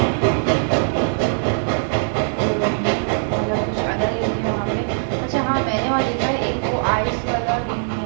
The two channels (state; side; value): silent; left; digital silence